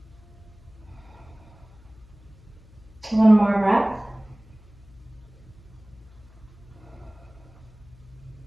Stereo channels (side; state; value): left; noise; hum, 24 dB below the sound